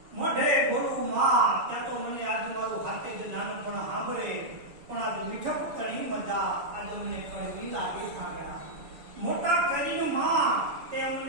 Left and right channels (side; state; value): left; late; 7.1 ms